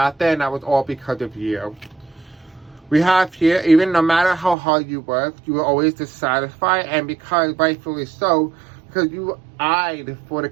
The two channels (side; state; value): left; drops out; at 4.5 s